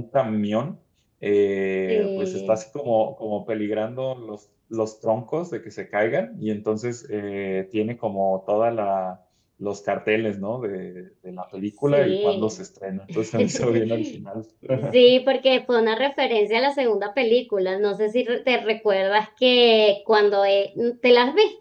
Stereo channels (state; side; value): identical; both; correlation 1.00